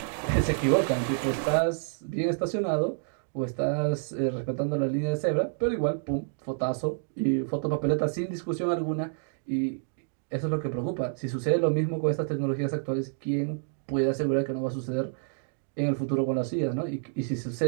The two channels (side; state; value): left; silent; digital silence